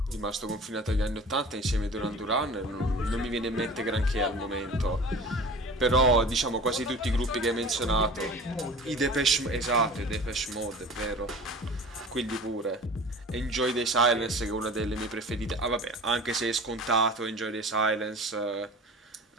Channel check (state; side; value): normal; both; correlation 0.40